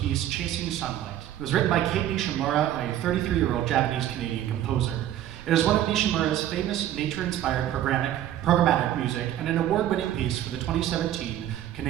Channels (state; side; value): quieter; left; 12.0 dB